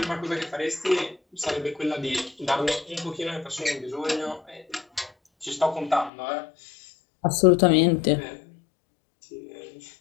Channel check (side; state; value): right; drops out; at 6.1 s